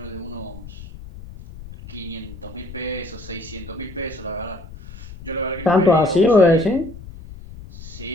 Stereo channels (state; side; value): noise; left; rumble, 15 dB below the sound